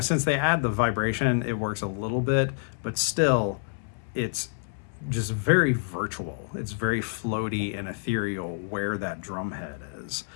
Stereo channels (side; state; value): right; silent; 60 dB below the other